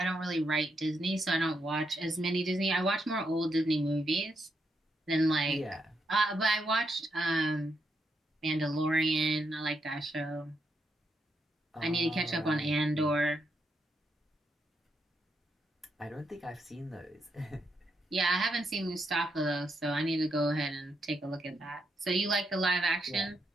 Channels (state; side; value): normal; both; correlation 0.81